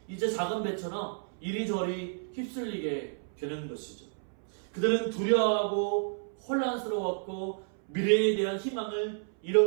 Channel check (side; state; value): left; silent; 57 dB below the other